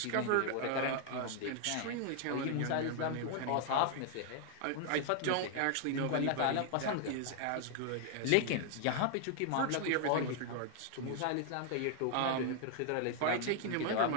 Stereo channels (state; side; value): different; both; correlation 0.00